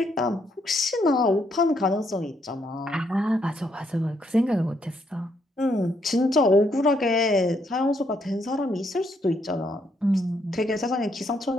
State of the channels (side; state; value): both; normal; correlation 0.74